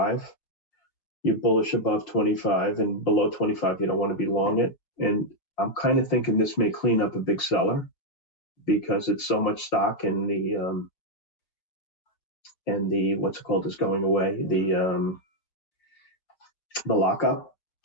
You're bullish above 25, and below 25, you don't want to be long it. And I'm kind of thinking this may clean up a big seller because it's so much stock, and the what's it called is going away, the lockup.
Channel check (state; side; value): late; right; 5.4 ms